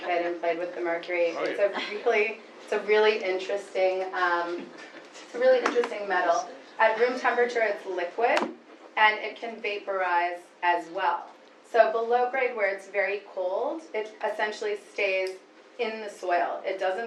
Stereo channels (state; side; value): identical; both; correlation 1.00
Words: kid and played with the mercury. Oh, It's a really interesting metal. At room temperature, it's liquid, and it can vaporize as well. So below grade, where it's very cold, it essentially stays in the soil. It doesn't